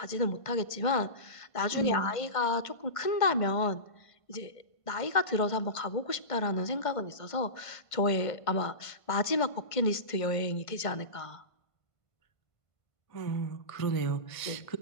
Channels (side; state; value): right; late; 1.5 ms